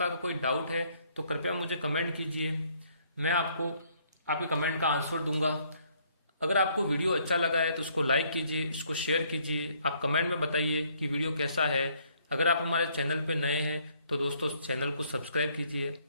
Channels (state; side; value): inverted; both; correlation -0.66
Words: का कोई डाउट है तो कृपया मुझे कमेंट कीजिए, मैं आपको आपके कमेंट का आंसर दूंगा। अगर आपको वीडियो अच्छा लगा है तो उसको लाइक कीजिए, इसको शेयर कीजिए, आप कमेंट में बताइए कि वीडियो कैसा है। अगर आप हमारे चैनल पे नए हैं तो दोस्तों चैनल को सब्सक्राइब कीजिए,